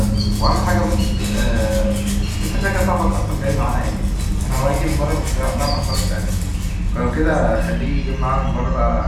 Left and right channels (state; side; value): identical; both; correlation 1.00